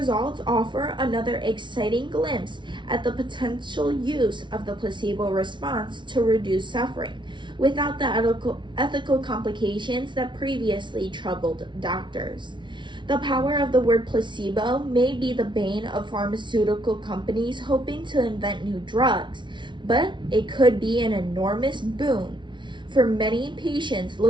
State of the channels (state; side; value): late; left; 0.23 ms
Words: offer another exciting glimpse at the potential use of the placebo response to reduce suffering, without the ethical complications that previously troubled doctors. The power of the word placebo may be the bane of pharmaceutical companies hoping to invent new drugs, but it could be an enormous boon for many patients